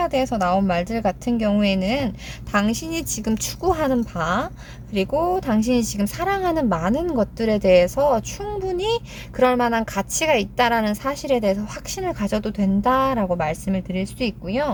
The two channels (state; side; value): identical; both; correlation 1.00